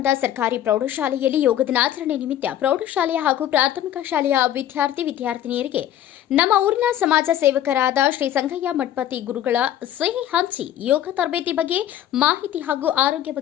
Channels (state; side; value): quieter; right; 11.5 dB